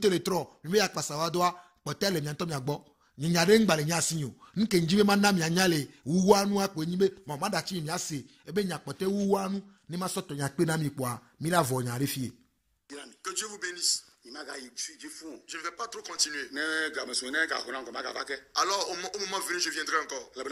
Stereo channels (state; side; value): identical; both; correlation 1.00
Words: mi me yakpasa wa doa potale nyanto mi agbo nyanyare ngbale nyasinyo nke njibe manna mi anyale uwanu akpo nyibe mama da chi mi ase ebe nyakpote uwanu ni ma soto nyakpe na mi kwa mi la vo nyare fie. Que Dieu vous bénisse. Je ne vais pas trop continuer. Alors au moment venu je viendrai encore.